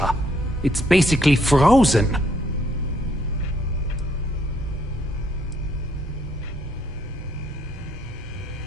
It's basically frozen.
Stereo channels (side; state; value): both; normal; correlation 0.69